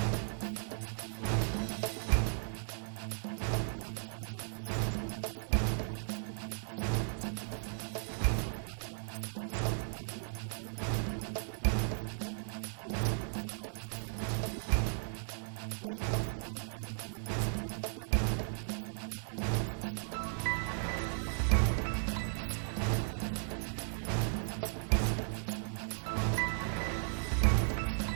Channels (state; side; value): silent; left; digital silence